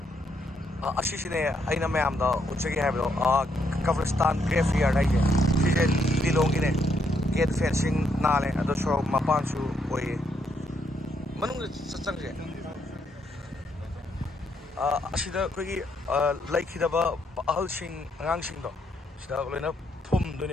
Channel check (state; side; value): normal; both; correlation 0.75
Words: असिसिने अइना मयामदा उचगे हायबो कब्रिस्तान ग्रेवयार्ड हाइजे सिजे लिलोंगिने गेट फेंसिंग नाले अदो सो मपानसु ओये मनुंग चंगजे असिदा कोगी लाइखिदबा अहलसिंग अंगांसिंगदो सिदा लोइना फुम